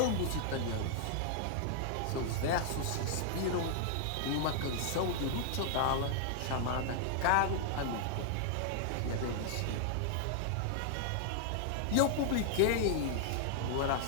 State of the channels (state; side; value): different; both; correlation -0.01